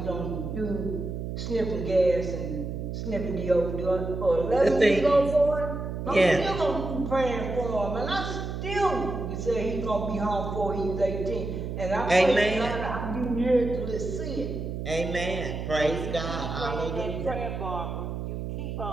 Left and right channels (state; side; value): noise; right; hum, 5 dB below the sound